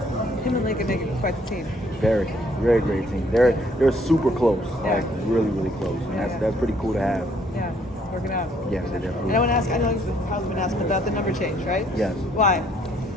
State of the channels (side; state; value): both; normal; correlation 0.65